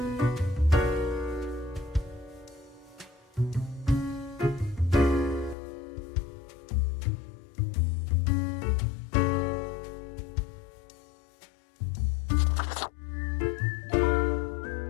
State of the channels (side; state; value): right; drops out; at 5.6 s